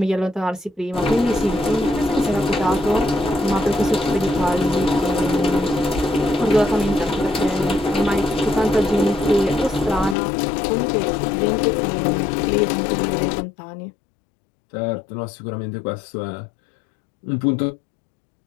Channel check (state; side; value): drops out; right; at 10.2 s